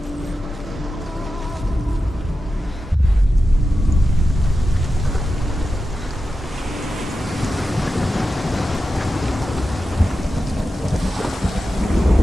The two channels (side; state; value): both; normal; correlation 0.92